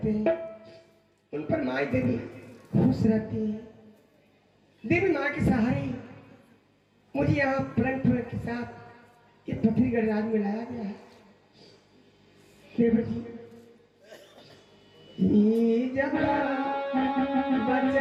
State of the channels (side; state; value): both; identical; correlation 1.00